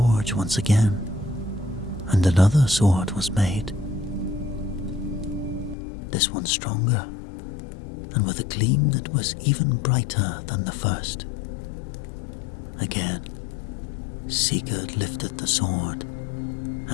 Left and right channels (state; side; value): drops out; right; at 5.8 s